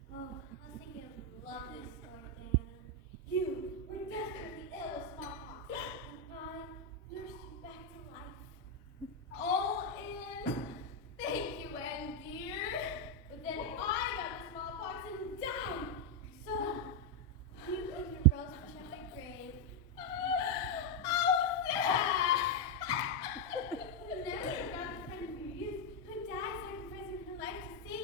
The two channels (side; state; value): both; normal; correlation 0.02